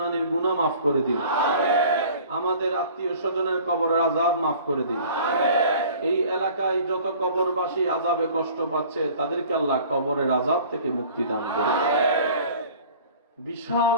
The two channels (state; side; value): inverted; both; correlation -0.47